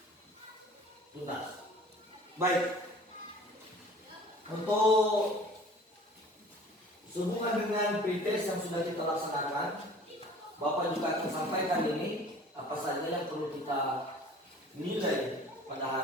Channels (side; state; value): both; normal; correlation 0.47